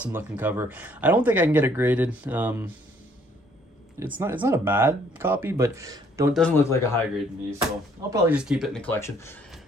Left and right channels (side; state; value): both; normal; correlation 0.63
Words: looking cover. I don't think I can get it graded. It's not a bad copy, but doesn't look like a high grade to me. So I'll probably just keep it in the collection.